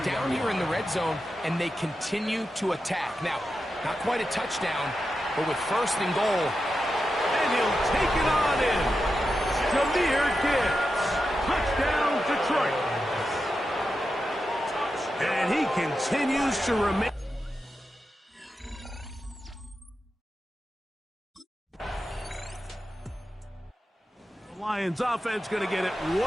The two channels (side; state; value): both; normal; correlation 0.89